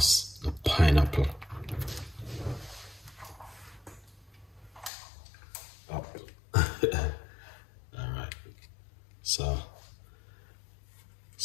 the pineapple. Oh. Alright, so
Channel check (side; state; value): right; drops out; at 4.9 s